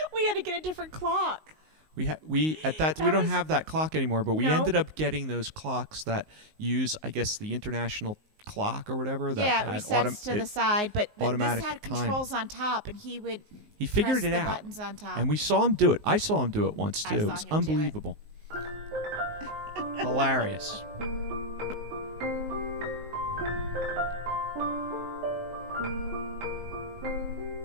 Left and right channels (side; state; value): left; late; 19 ms